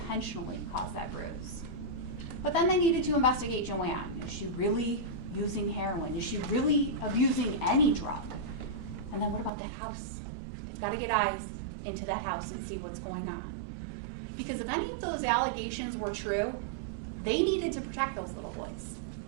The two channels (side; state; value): left; drops out; at 9.5 s